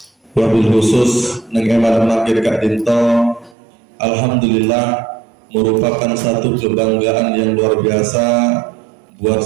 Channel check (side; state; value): left; drops out; at 3.6 s